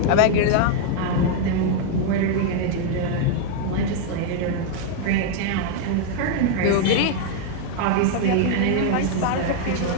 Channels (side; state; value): both; different; correlation 0.00